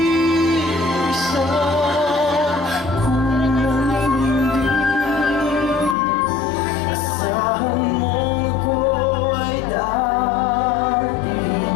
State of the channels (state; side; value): drops out; right; at 6.0 s